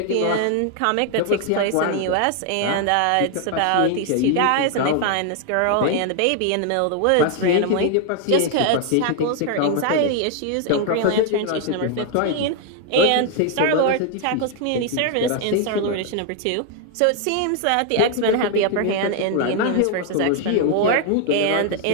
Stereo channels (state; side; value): different; both; correlation 0.00